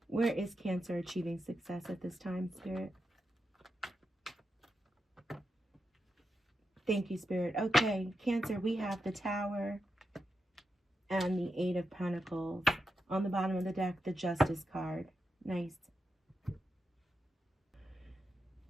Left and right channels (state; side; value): normal; both; correlation 0.86